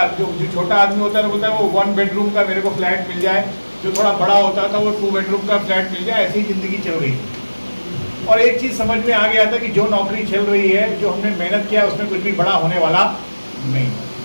जो छोटा आदमी होता है बोलता है वो 1 बेडरूम का मेरे को फ्लैट मिल जाए, जो थोड़ा बड़ा होता था वो 2 बेडरूम का फ्लैट मिल जाए। ऐसी ज़िंदगी चल रही थी। और एक चीज़ समझ में आ गया था कि जो नौकरी चल रही है, जो हमने मेहनत किया उसमें कुछ भी बड़ा होने वाला नहीं।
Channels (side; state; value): both; inverted; correlation -1.00